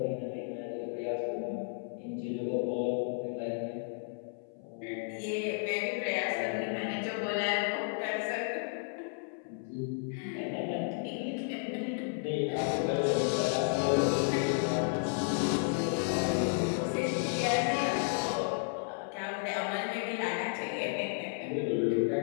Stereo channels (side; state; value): right; silent; 56 dB below the other